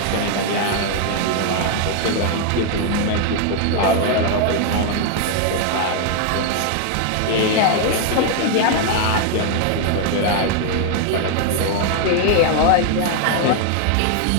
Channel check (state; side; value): different; both; correlation 0.00